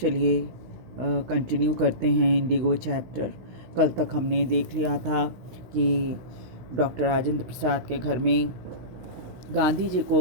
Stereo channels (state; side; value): late; left; 16 ms